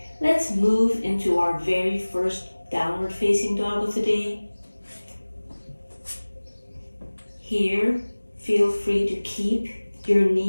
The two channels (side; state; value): both; inverted; correlation -1.00